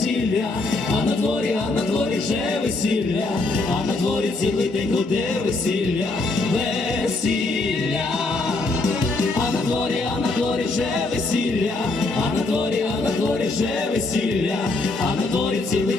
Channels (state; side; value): quieter; right; 3.2 dB